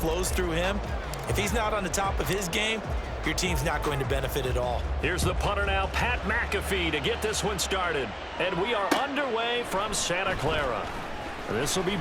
through him, if he's not on the top of his game, your team's not going to benefit at all. Here's the punter now, Pat McAfee, to get this one started. And we are underway from Santa Clara. This will be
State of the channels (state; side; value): identical; both; correlation 1.00